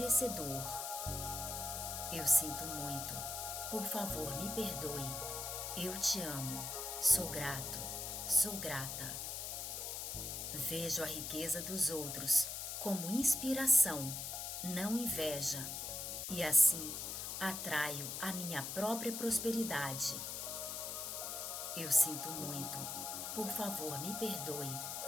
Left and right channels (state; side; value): noise; left; hiss, 4 dB below the sound